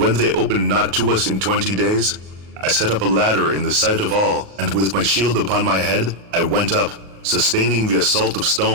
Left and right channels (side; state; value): left; late; 38 ms